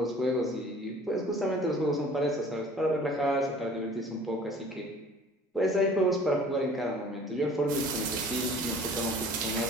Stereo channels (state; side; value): normal; both; correlation 0.49